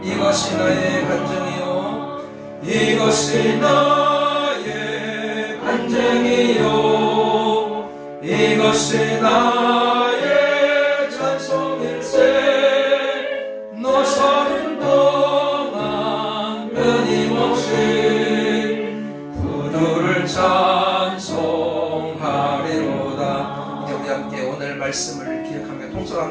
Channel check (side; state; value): both; identical; correlation 1.00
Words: 이것이 나의 간증이요 이것이 나의 간증이요 이것이 나의 찬송일세. 너 사는 동안 끊임없이 구주를 찬송하리로다. 이제 우리 함께 오늘 말씀을 기억하며 통솔